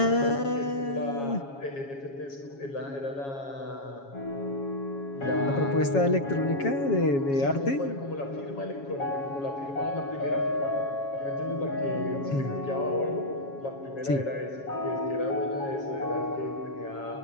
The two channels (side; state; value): right; late; 7.3 ms